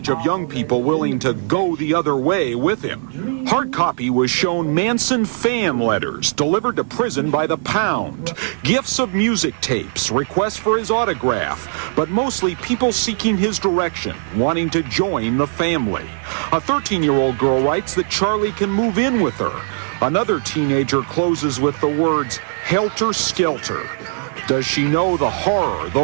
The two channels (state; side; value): silent; left; 62 dB below the other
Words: of young people willing to go the other way with him. Hard copy was shown Manson fan letters delivered to prison by the pound, gifts of music tapes, requests for his autograph, but mostly people seeking his direction, wanting to join the family. A 13-year-old girl writes that Charlie can move in with her. Another teenager closes with the words, helter skelter. Does she know the horror